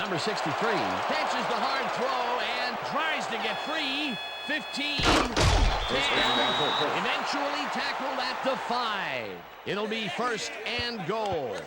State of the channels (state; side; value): identical; both; correlation 1.00